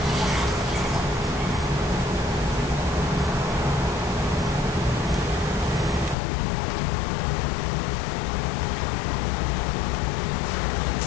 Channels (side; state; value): right; drops out; at 6.2 s